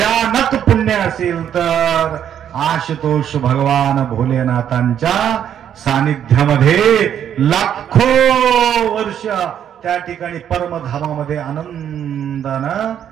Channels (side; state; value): left; quieter; 9.5 dB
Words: पुण्य असेल तर आशुतोष भगवान भोलेनाथांच्या सानिध्यामध्ये लाखो वर्ष त्या ठिकाणी परमधामामध्ये आनंदानं